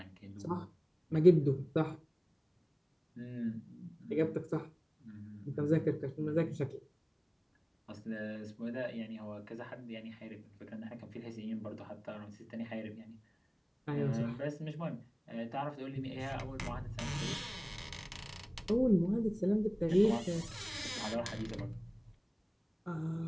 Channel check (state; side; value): identical; both; correlation 1.00